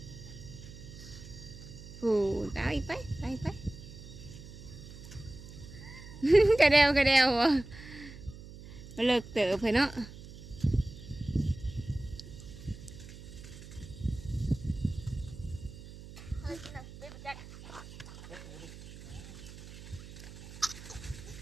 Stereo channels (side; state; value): right; noise; hum, 15 dB below the sound